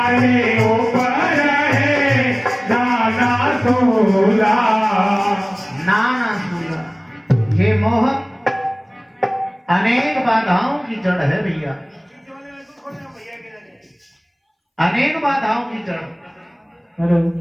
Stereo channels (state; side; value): identical; both; correlation 1.00